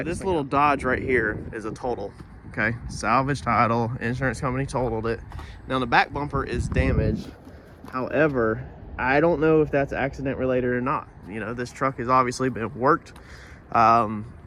this little Dodge right here is a total. Okay, salvage title, insurance company totaled it. Now the back bumper is damaged. However, I don't know if that's accident related or not. You know, this truck has obviously been worked.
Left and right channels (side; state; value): both; identical; correlation 1.00